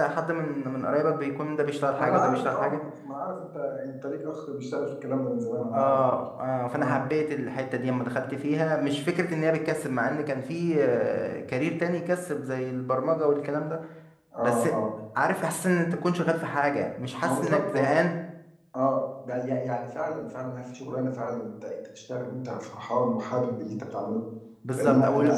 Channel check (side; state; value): both; identical; correlation 1.00